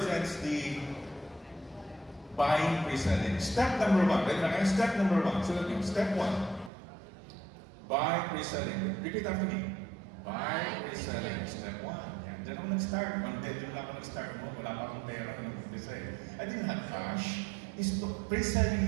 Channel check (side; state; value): left; drops out; at 6.7 s